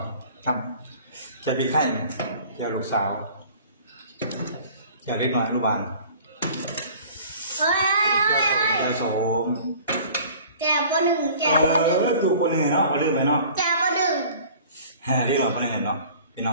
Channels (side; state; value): both; inverted; correlation -0.47